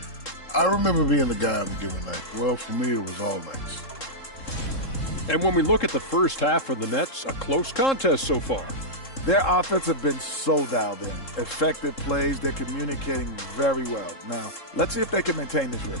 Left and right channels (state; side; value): late; right; 3.7 ms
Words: I remember being the guy on a given night. Well, for me, it was all nights. And when we look at the first half for the Nets, a close contest so far. Their offense have been so dialed in. Effective plays, they're communicating very well. Now, let's see if they can maintain this